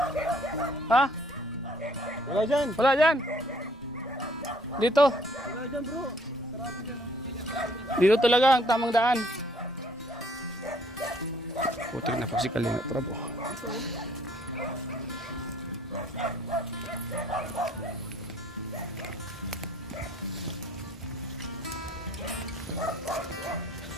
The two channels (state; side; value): normal; both; correlation 0.61